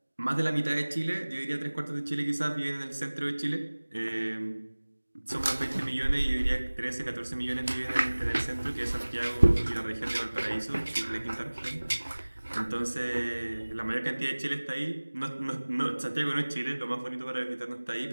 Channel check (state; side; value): inverted; both; correlation -1.00